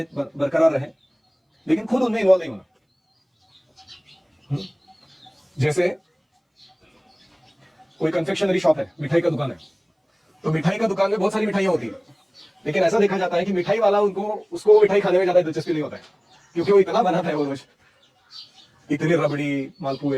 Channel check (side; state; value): both; identical; correlation 1.00